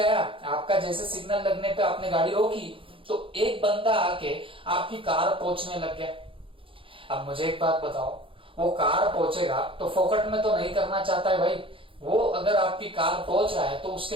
आपका जैसे सिग्नल लगने पे आपने गाड़ी रोकी तो एक बंदा आके आपकी कार पहुंचने लग गया। अब मुझे एक बात बताओ, वो कार पहुंचेगा तो फोकट में तो नहीं करना चाहता है भाई। वो अगर आपकी कार पहुंच रहा है तो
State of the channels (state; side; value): late; left; 0.25 ms